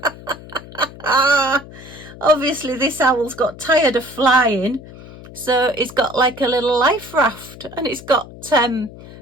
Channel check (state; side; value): noise; left; hum, 17 dB below the sound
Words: Obviously, this owl's got tired of flying. So it's got like a little life raft and it's got